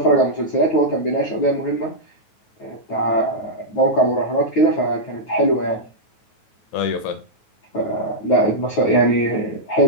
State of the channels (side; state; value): right; late; 9.3 ms